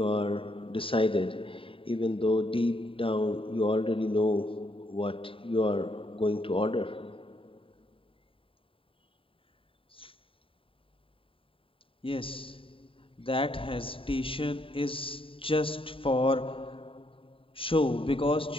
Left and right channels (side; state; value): right; late; 0.26 ms